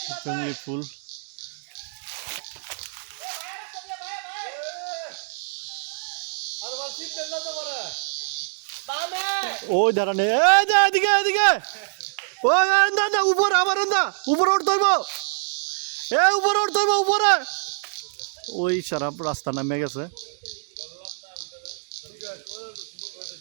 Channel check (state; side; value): silent; left; digital silence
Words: জঙ্গলি ফুল। ওই দাঁড়ানে, এদিকে এদিকে, ওই উপর আবার উপরে উঠতে হইব, উপরে উঠতে হইব উপরে। ওই সারা রাস্তা নামে গেছে,